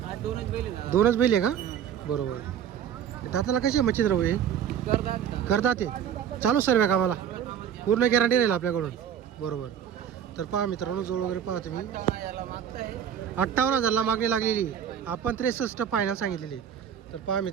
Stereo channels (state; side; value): quieter; left; 9.0 dB